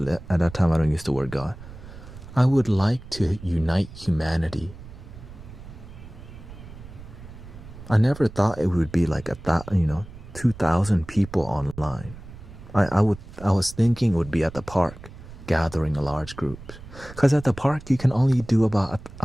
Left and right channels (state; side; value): noise; right; rumble, 16 dB below the sound